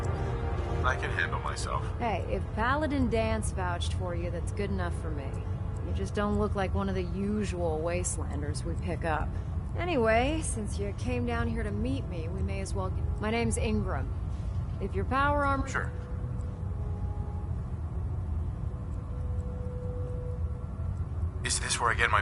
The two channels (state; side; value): identical; both; correlation 1.00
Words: I can handle myself. Hey, if Paladin Danse vouched for you, that's good enough for me. You just don't look like one of the usual wastelanders we pick up. Anyway, since you came down here to meet me, we may as well get... My name's Ingram. If your power armor... Sure. Is this where I get my